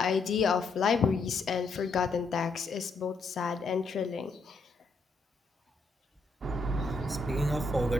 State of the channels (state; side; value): quieter; right; 3.6 dB